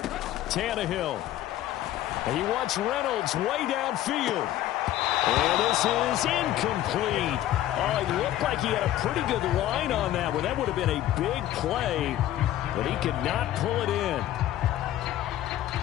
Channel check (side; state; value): right; quieter; 13.2 dB